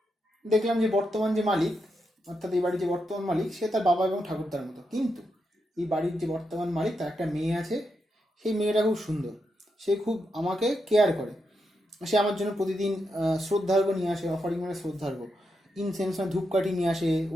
দেখলাম যে বর্তমান যে মালিক, অর্থাৎ এই বাড়ির যে বর্তমান মালিক, সে তার বাবা এবং ঠাকুরদার মতো, কিন্তু এই বাড়ির যে বর্তমান মালিক তার একটা মেয়ে আছে, সেই মেয়েটা খুব সুন্দর, সে খুব আমাকে কেয়ার করে, সে আমার জন্য প্রতিদিন শ্রদ্ধার্ঘ্য নিয়ে আসে, অফারিং মানে শ্রদ্ধার্ঘ্য, ইনসেন্স মানে ধূপকাঠি নিয়ে আসে,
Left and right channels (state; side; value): normal; both; correlation 0.84